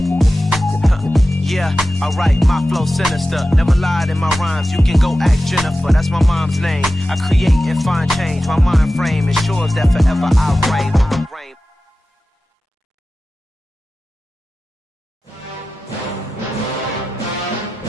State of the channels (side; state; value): both; normal; correlation 0.94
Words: Yeah, alright, my flow sinister. Never lied in my rhymes, you can go ask Jennifer, that's my mom's name. I create and find change, my mind frame ensures that forever I reign.